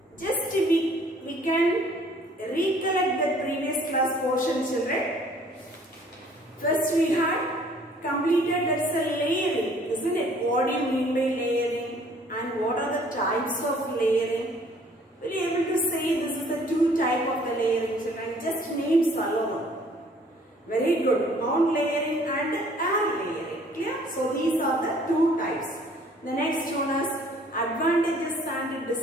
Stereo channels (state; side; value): normal; both; correlation 0.57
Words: Just we can recollect the previous class portion, children. First we had completed, that's a layering, isn't it? What do you mean by layering? And what are the types of layering? Will you able to say this is the two type of the layering, children? Just names alone. Very good. Ground layering and air layering. Clear? So these are the two types. The next one is advantages and